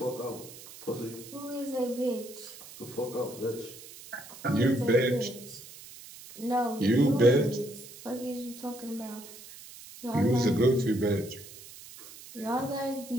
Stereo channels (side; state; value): right; noise; hiss, 16 dB below the sound